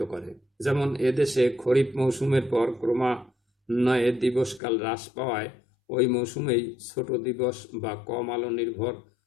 করে। যেমন এদেশে খরিফ মৌসুমের পর ক্রমান্বয়ে দিবসকাল হ্রাস পাওয়ায় ওই মৌসুমেই ছোট দিবস বা কম আলো নির্ভর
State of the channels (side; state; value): right; drops out; at 4.6 s